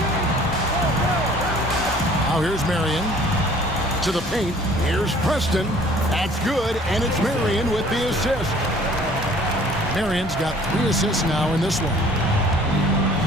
Now here's Marion to the paint. Here's Preston. That's good, and it's Marion with the assist. Marion's got 3 assists now in this one.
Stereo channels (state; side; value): normal; both; correlation 0.53